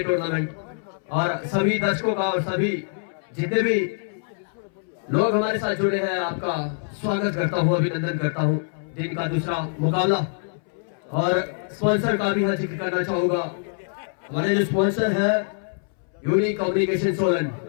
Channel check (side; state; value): right; silent; 62 dB below the other